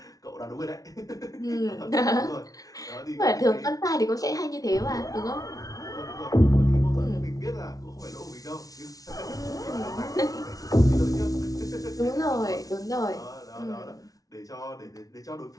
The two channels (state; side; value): late; right; 0.18 ms